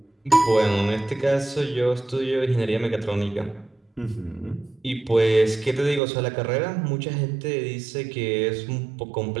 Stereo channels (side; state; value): left; drops out; at 6.0 s